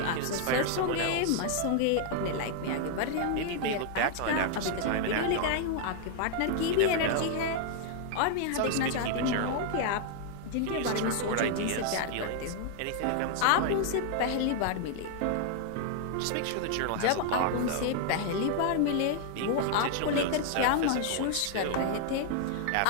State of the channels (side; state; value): both; different; correlation 0.00